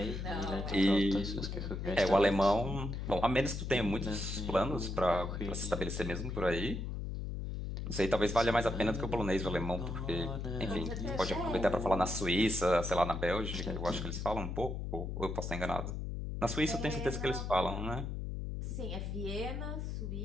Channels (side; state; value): left; noise; hum, 4 dB below the sound